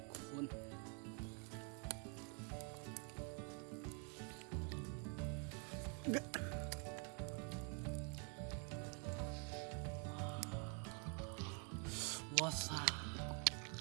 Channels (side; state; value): left; quieter; 37.5 dB